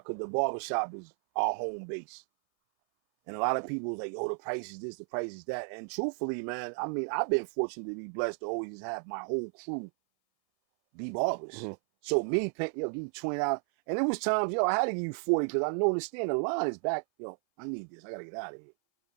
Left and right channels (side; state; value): left; silent; 56 dB below the other